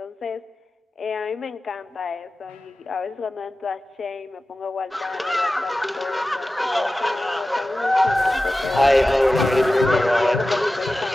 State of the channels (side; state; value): both; normal; correlation 0.95